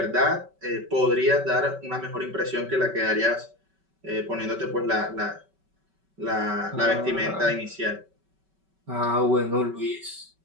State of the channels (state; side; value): late; left; 5.3 ms